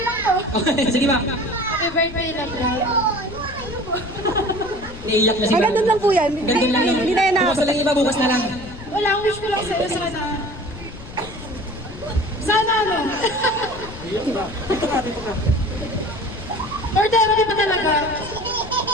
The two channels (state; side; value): noise; left; rumble, 14 dB below the sound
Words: Okay, sige ma'am. Happy birthday, love. Naiiyak na si Ay, ma'am. ganun lang po yan. Ganun lang yun. Hindi na yan Bukas na lang iba, bukas na lang. Wala, ang wish ko lang sa'yo sana. Sana ano? Or therapy pa talaga.